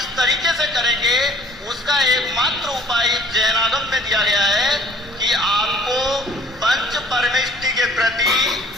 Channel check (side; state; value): both; normal; correlation 0.54